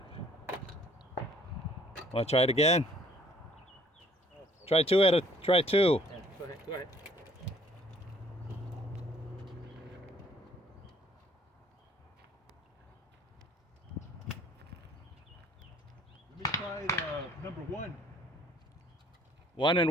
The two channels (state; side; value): normal; both; correlation 0.59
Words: Want to try it again? Try 2 at a. Try 2. Yeah, go ahead. Go ahead. Let me try the number 1. 1 and